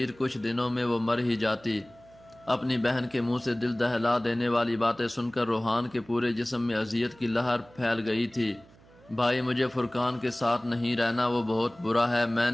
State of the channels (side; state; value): right; noise; hum, 26 dB below the sound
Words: کچھ دنوں میں وہ مر ہی جاتی۔ اپنی بہن کے منہ سے دل دہلا دینے والی باتیں سن کر روحان کے پورے جسم میں اذیت کی لہر پھیل گئی تھی۔ بھائی مجھے فرقان کے ساتھ نہیں رہنا، وہ بہت برا ہے، میں